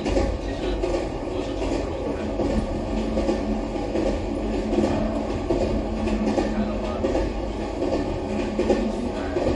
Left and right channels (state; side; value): identical; both; correlation 1.00